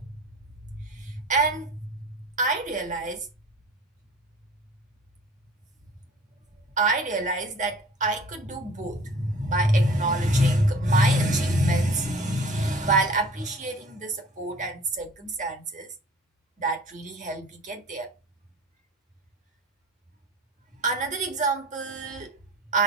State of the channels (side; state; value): both; normal; correlation 0.45